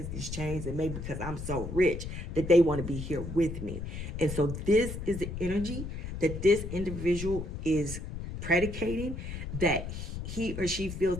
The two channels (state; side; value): noise; left; rumble, 7 dB below the sound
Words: these chains, and maybe because I'm so rich that they want to be here with me. And so this is the energy that this individual is predicating, that he or she feels